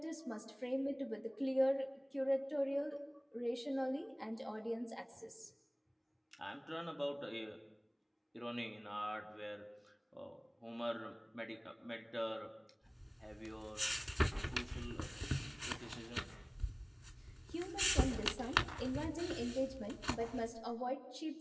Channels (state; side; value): identical; both; correlation 1.00